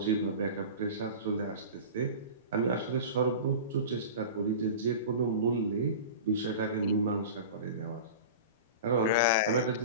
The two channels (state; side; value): inverted; both; correlation -0.33